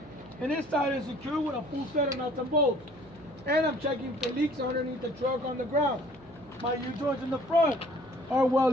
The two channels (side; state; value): right; noise; hum, 23 dB below the sound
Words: and it's tied and secured with a full set of nuts and bolts. And I'm checking for leaks underneath the truck on the ground. My U-joints in the front are well